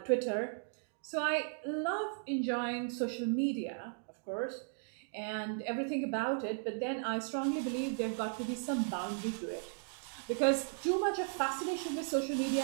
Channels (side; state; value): left; silent; digital silence